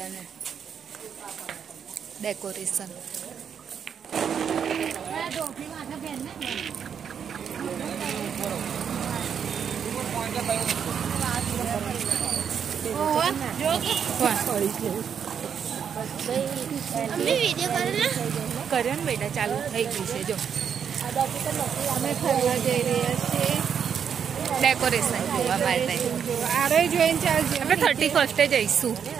ડેકોરેશન. કર્યો ને બેટા, ચાલુ થઈ ગયું છે. જો અમે ફરવા જઈ રહ્યા છીએ ડેકોરેશન જોવા માટે. આપણે 31 જઈશું.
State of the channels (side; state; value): left; quieter; 7.6 dB